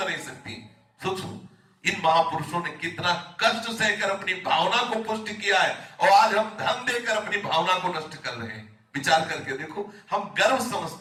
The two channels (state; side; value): identical; both; correlation 1.00